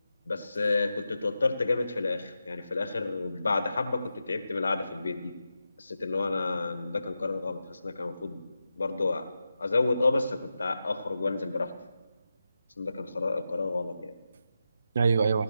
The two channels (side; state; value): both; inverted; correlation -0.89